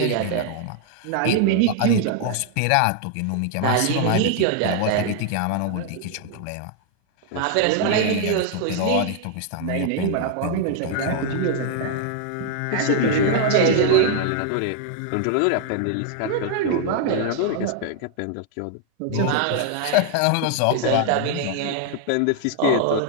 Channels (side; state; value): both; different; correlation 0.00